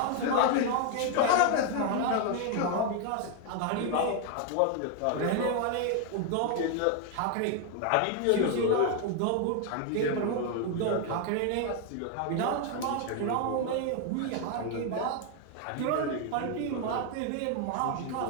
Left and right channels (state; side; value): different; both; correlation 0.01